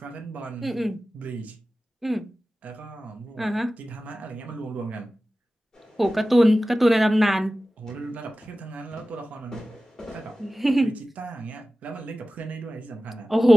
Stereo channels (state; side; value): normal; both; correlation 0.95